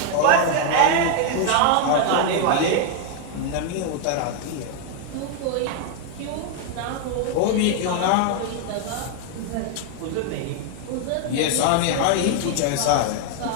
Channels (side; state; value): both; different; correlation 0.01